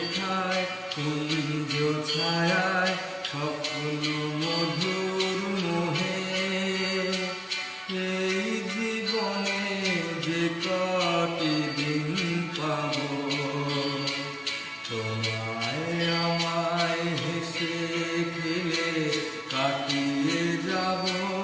কুঞ্জ ছায়ায় স্বপ্ন মধুর মোহে, এই জীবনে যে কটি দিন পাব, তোমায় আমায় হেসে খেলে কাটিয়ে যাব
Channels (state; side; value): identical; both; correlation 1.00